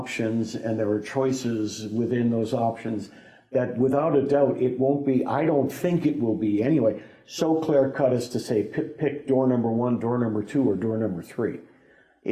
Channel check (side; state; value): both; identical; correlation 1.00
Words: and there are choices within those options that without a doubt it won't be, I don't think it will be anyway, so clear cut as to say pick door number 1, door number 2, or door number 3.